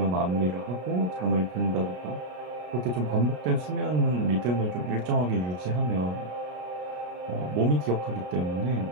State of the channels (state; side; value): late; left; 33 ms